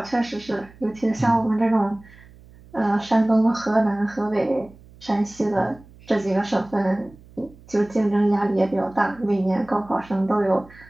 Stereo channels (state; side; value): noise; right; hum, 23 dB below the sound